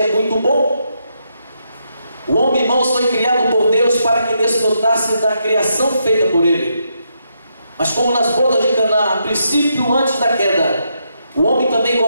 muito bom. O homem, irmãos, foi criado por Deus para que desfrutasse da criação feita por ele. Mas como nas bodas de Caná, a princípio, antes da queda, o homem também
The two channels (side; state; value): both; inverted; correlation -0.80